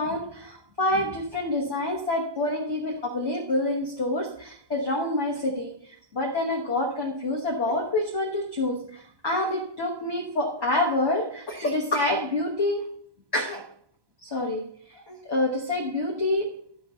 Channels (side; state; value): left; late; 1.1 ms